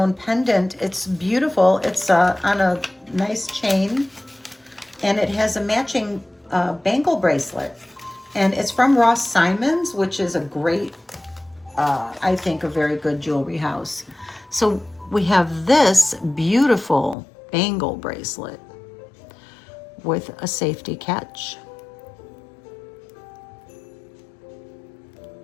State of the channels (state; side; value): drops out; right; at 17.2 s